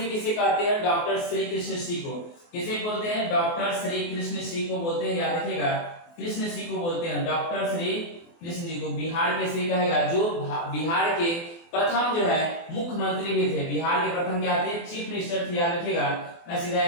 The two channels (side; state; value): right; late; 24 ms